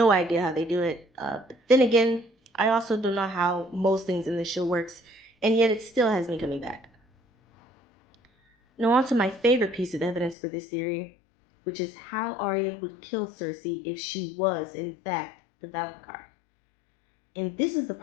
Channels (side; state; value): right; drops out; at 10.4 s